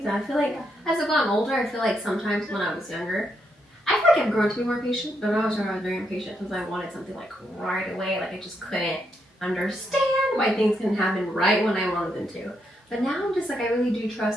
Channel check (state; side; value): normal; both; correlation 0.79